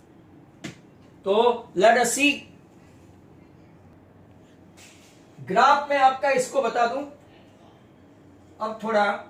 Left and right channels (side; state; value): both; identical; correlation 1.00